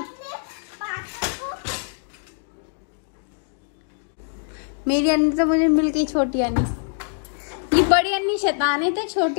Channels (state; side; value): silent; right; digital silence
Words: मेरी अन्नी तो मुझे मिल गई छोटी अन्नी। ये बड़ी अन्नी शैतान है, तो